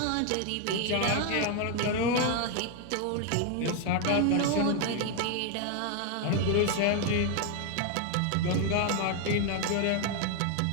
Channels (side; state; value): both; different; correlation 0.01